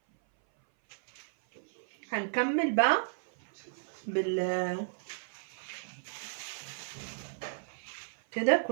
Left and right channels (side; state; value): left; silent; 55 dB below the other